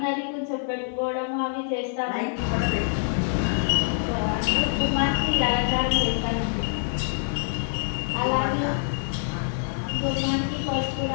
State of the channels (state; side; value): silent; right; digital silence